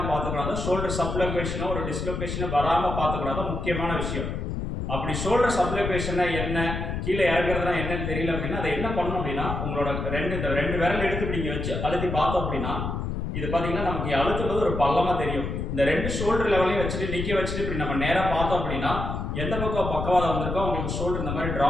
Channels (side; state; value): left; noise; rumble, 3 dB below the sound